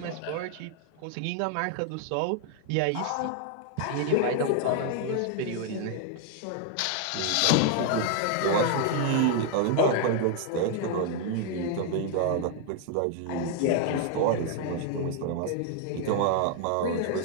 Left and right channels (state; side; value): different; both; correlation 0.00